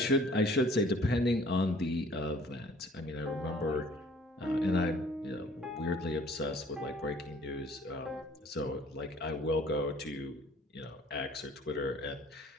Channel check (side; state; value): both; normal; correlation 0.54